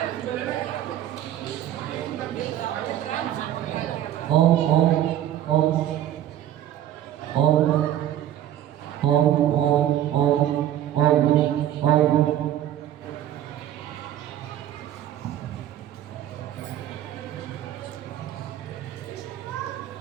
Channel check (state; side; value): quieter; left; 11.9 dB